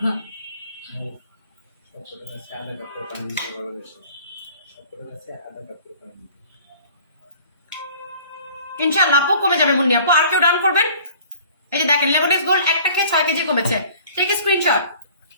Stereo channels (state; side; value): inverted; both; correlation -0.50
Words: সবকটার কাছে আধা কাপ করে পানি দিতে বলা হয়েছে। সবকটার কাছে আধা কাপ করে পানি দিতে। ইনশাআল্লাহ আপু কমে যাবে মুন্নি আপু। আর কেউ ডান করবেন? এই যে দেখেন লেমনেক্স গোল্ড একটা খেয়ে 6 কেজি কমেছে, টেক স্ক্রিনশট।